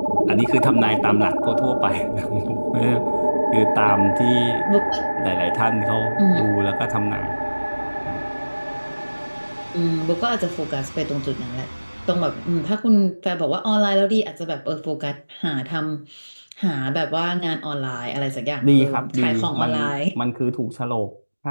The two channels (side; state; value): both; inverted; correlation -1.00